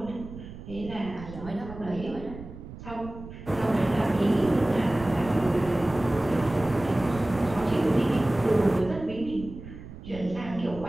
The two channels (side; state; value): right; noise; rumble, 14 dB below the sound